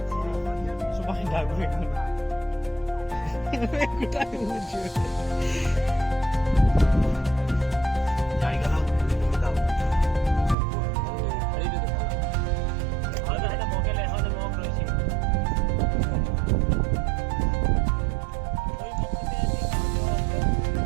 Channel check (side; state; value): left; drops out; at 10.6 s